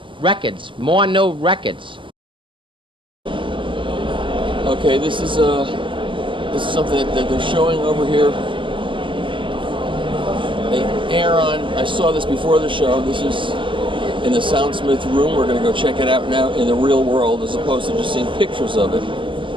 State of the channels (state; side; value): late; left; 0.25 ms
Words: Records. More new records. Okay, this is something that they're showing over here. Airon, I saw this before the show. This is in the Soundsmith room. We're going to go check it out now in the real world as opposed to just seeing pictures of it.